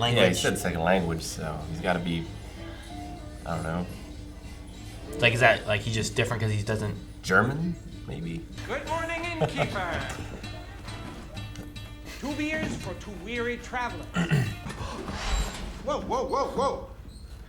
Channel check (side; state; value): both; identical; correlation 1.00